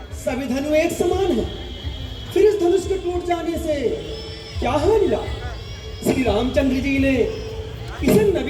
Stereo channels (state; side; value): identical; both; correlation 1.00